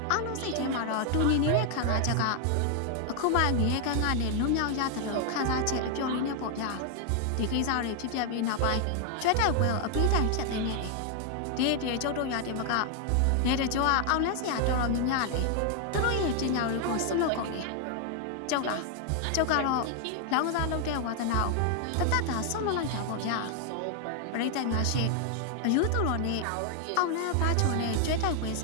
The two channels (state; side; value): different; both; correlation 0.00